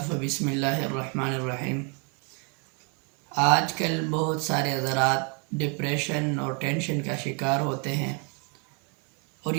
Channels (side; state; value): left; quieter; 35.9 dB